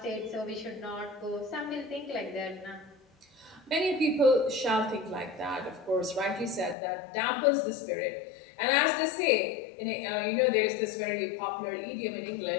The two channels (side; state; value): right; drops out; at 6.8 s